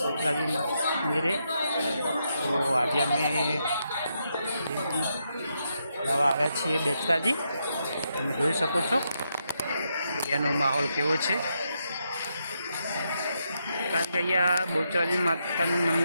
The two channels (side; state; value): both; inverted; correlation -0.81